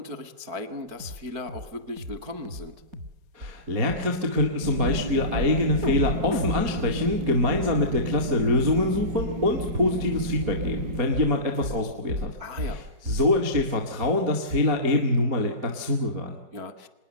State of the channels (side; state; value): left; late; 4.3 ms